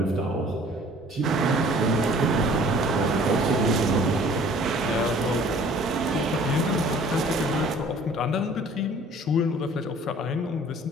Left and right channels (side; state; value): both; normal; correlation 0.52